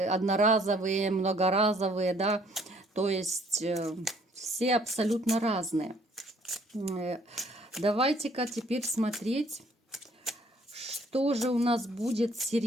многоразовые, да. То есть все абсолютно разные. Давайте-ка теперь смотреть, что же у нас будет с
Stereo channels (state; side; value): normal; both; correlation 0.62